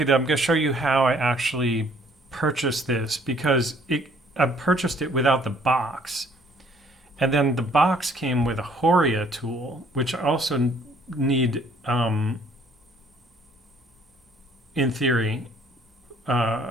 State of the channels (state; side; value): normal; both; correlation 0.60